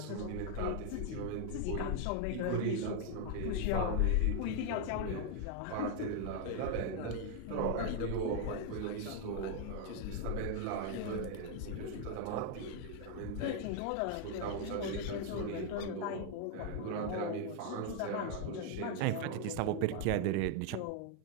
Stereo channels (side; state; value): both; different; correlation 0.00